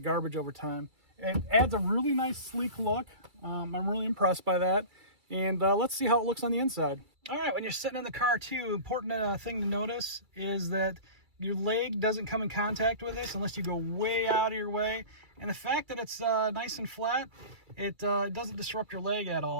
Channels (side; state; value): left; late; 2.3 ms